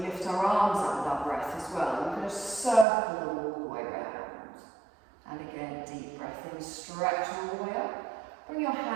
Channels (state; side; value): drops out; left; at 2.9 s